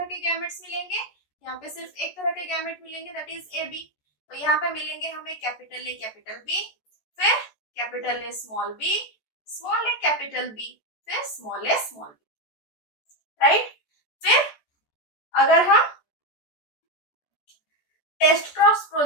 के गैमेट्स मिलेंगे, यहाँ पे सिर्फ एक तरह के गैमेट मिलेंगे, दैट इज ए बी। तो यहाँ पे मिलेंगे हमें कैपिटल ए कैपिटल बी, फिर capital A small A capital B, फिर small A small B, right. फिर अगर हम टेस्ट क्रॉस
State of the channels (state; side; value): late; right; 14 ms